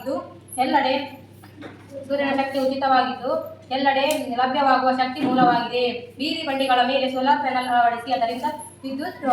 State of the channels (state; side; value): identical; both; correlation 1.00